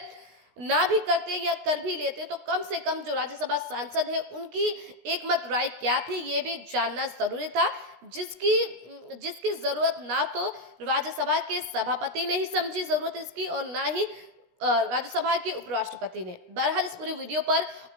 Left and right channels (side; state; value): left; late; 16 ms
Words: ना भी करते या कर भी लेते तो कम से कम जो राज्यसभा सांसद है उनकी एक मत राय क्या थी ये भी जानना जरूरी था, जिसकी जरूरत ना तो राज्यसभा के सभापति ने ही समझी जरूरत इसकी और ना ही राज्यसभा के उपराष्ट्रपति ने। बहरहाल इस पूरी वीडियो पर